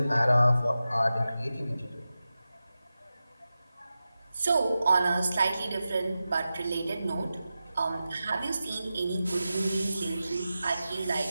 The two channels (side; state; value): both; inverted; correlation -0.93